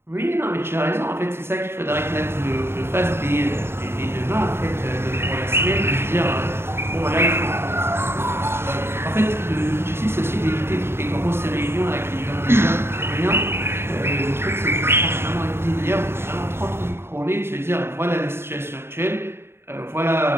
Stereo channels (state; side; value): late; left; 0.12 ms